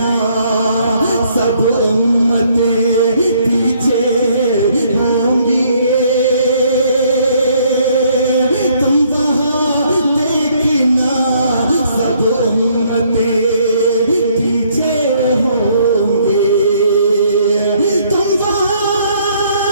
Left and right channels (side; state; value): both; inverted; correlation -0.66